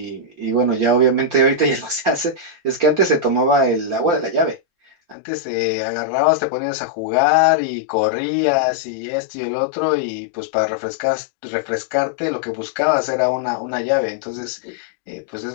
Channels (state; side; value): drops out; right; at 5.2 s